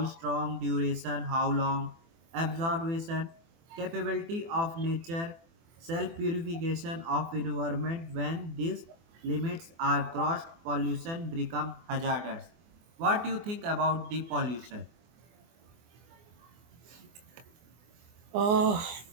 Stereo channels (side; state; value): left; late; 24 ms